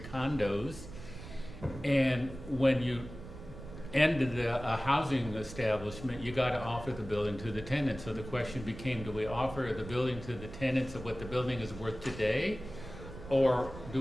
condos. And when you ended a housing establishment, you got to offer the building to the tenants. So the question became, do we offer the building to the tenants of what the building is worth today, or do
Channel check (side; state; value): right; noise; rumble, 13 dB below the sound